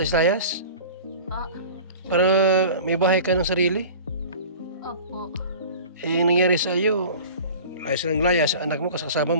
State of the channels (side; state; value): both; inverted; correlation -0.40